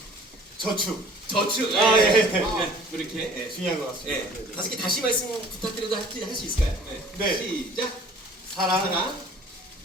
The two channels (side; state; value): both; normal; correlation 0.50